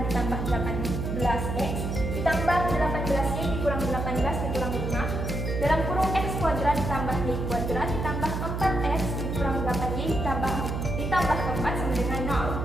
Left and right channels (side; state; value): right; noise; hum, 3 dB below the sound